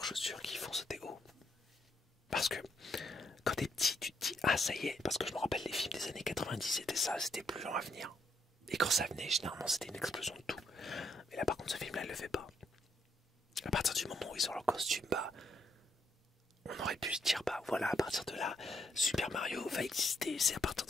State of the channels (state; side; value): normal; both; correlation 0.75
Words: chaussures qui font sauter haut. Parce que quand t'es petit, tu te dis ah ça y est, parce que je me rappelle les films des années 90, c'était ça, c'était plus lent à venir. Et quand ça venait, généralement c'était une explosion de tout. Mais là par contre ce film-là, il le fait pas. À partir du moment où ils ont leur costume, bah on aurait pu se dire bah voilà, à partir de là, Super Mario va exister, c'est à partir